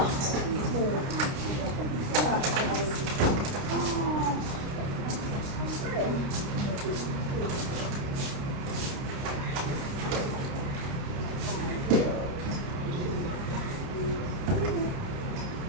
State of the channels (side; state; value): left; late; 29 ms